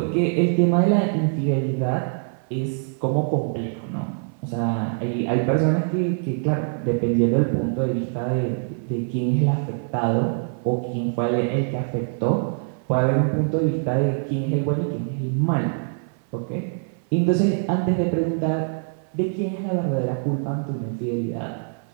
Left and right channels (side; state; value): left; silent; 58 dB below the other